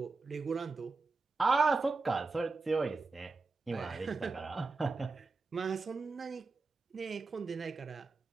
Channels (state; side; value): quieter; left; 4.0 dB